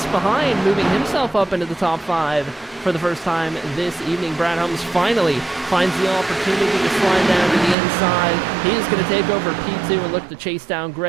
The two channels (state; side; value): drops out; left; at 7.8 s